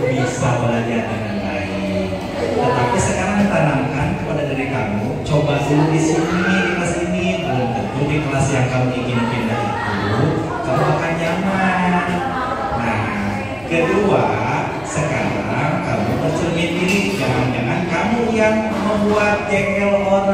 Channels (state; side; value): noise; left; hum, 24 dB below the sound